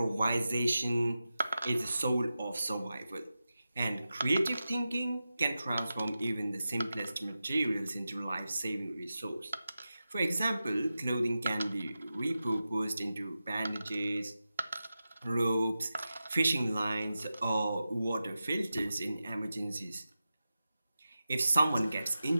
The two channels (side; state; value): both; inverted; correlation -0.93